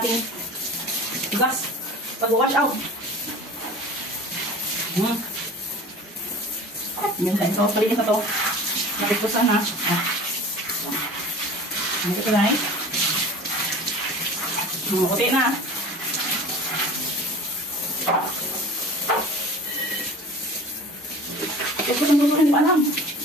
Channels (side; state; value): both; normal; correlation 0.40